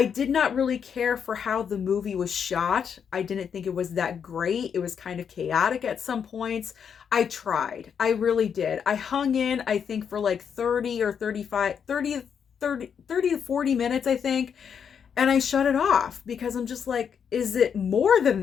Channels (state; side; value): quieter; right; 7.3 dB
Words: did not really care for how the movie was shot. I didn't think it was that great. It was kind of chaotic at some points. I tried. I really did. I hung in, I think, for like 30 or 35, 30 to 40 minutes, I think. And I shut it off because I'm just like, is it more than